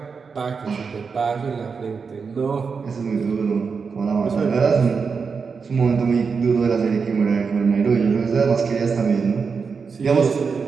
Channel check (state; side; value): quieter; left; 5.4 dB